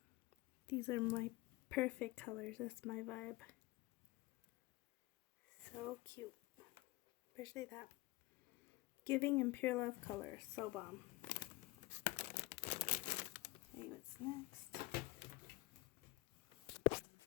These are my perfect colors. That's my vibe. So cute. Especially that giving and pure love color. So bomb. Okay, what's next?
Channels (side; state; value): right; quieter; 20.0 dB